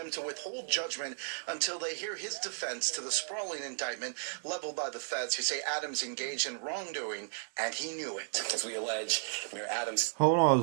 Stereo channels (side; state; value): left; silent; digital silence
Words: to withhold judgment until they hear his defense to the sprawling indictment leveled by the feds, who say Adams engaged in wrongdoing and he knew it. As we allege, Mayor Adams. Hold on,